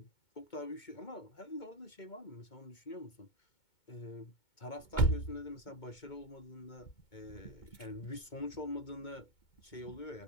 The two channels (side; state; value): right; late; 2.2 ms